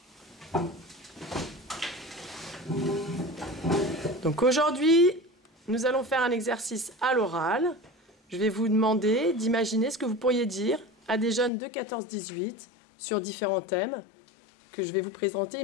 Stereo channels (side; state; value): right; drops out; at 11.5 s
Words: Donc aujourd'hui, nous allons faire un exercice à l'oral. Je vais vous demander d'imaginer ce que vous pourriez dire à des jeunes de 14-18 sur différents thèmes que je vais vous présenter